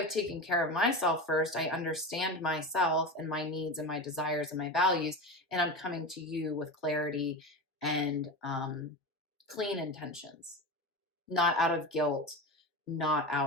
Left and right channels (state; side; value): normal; both; correlation 0.25